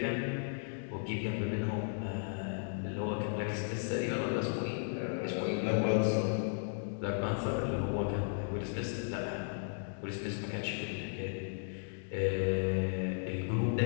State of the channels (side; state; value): right; silent; digital silence